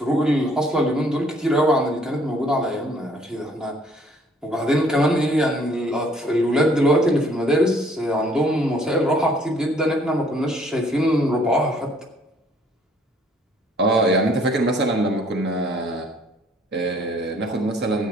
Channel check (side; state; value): both; normal; correlation 0.61